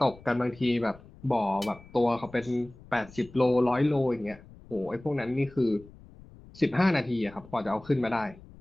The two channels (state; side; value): noise; left; rumble, 21 dB below the sound